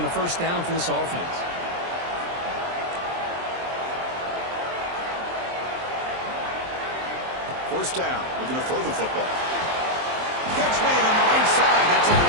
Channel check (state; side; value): late; left; 23 ms